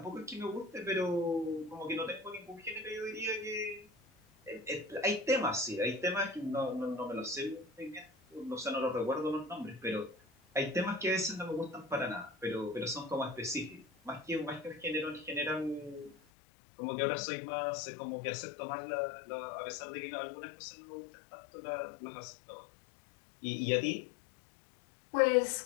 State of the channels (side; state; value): right; drops out; at 16.2 s